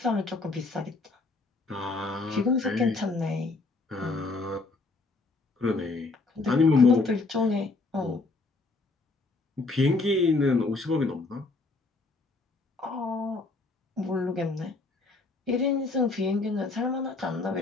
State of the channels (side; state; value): right; quieter; 3.5 dB